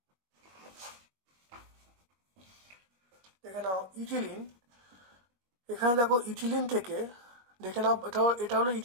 দেখে নাও ইথিলিন, এখানে দেখো ইথিলিন থেকে দেখে নাও, এটা হলো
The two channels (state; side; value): late; left; 21 ms